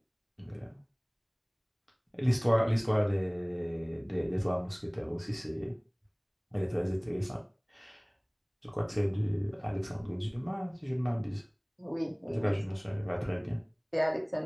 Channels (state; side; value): identical; both; correlation 1.00